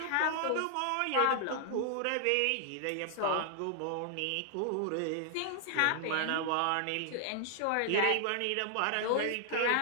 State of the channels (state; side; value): different; both; correlation 0.00